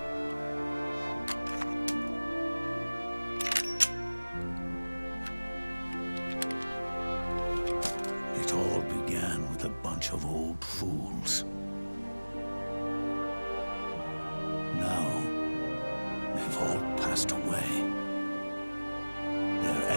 It all began with a bunch of old fools. Now, they've all passed away. Their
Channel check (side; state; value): both; inverted; correlation -1.00